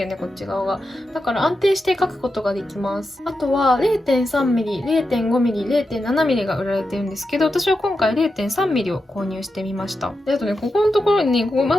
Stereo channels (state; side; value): normal; both; correlation 0.89